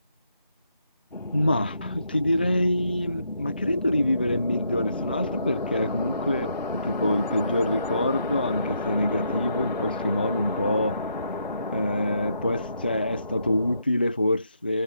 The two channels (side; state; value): both; inverted; correlation -0.76